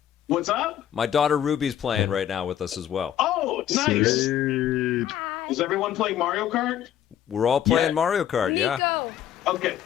What's up? My daughter Ruby's playing right now with us as well. Oh, nice. Sweet. Is everyone playing Mario Kart? We're all playing Yeah. Mario Kart, yeah. Nico. Okay.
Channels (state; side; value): quieter; right; 10.7 dB